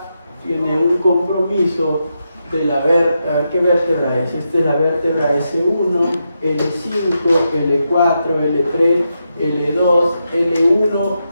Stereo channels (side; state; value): both; inverted; correlation -0.85